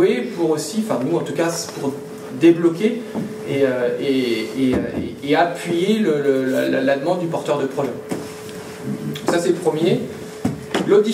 pour aussi, enfin nous en tout cas, pour débloquer et appuyer la demande du porteur de projet. Ça, c'est le premier. L'autre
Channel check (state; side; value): identical; both; correlation 1.00